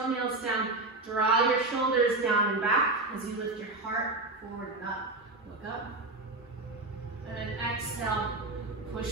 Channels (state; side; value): quieter; left; 3.0 dB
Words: down, draw your shoulders down and back as you lift your heart forward and up. Look up. And then exhale,